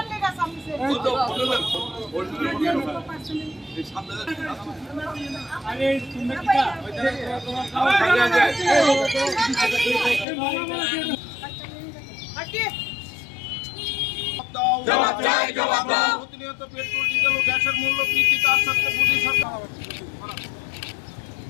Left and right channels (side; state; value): right; drops out; at 10.2 s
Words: लेगा सामने से? अरे জবাব চাই, জবাব দাও। প্রতিনিয়ত পেট্রোল ডিজেল ও গ্যাসের মূল্য বৃদ্ধি তার সাথে মোদী সরকার